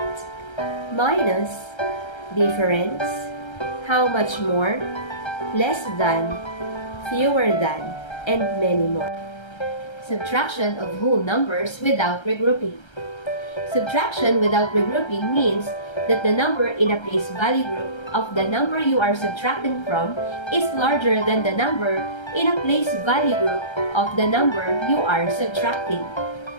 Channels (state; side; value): late; right; 1.3 ms